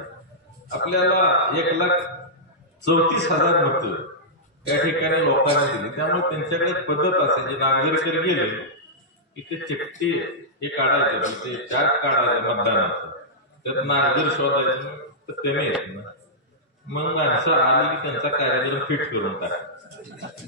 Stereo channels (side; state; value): both; normal; correlation -0.12